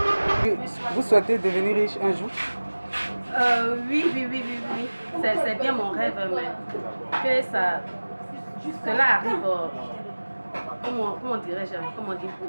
Vous souhaitez devenir riche un jour? Oui. C'est bien mon rêve, mais que cela arrive, comment dirais-je,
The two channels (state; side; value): inverted; both; correlation -1.00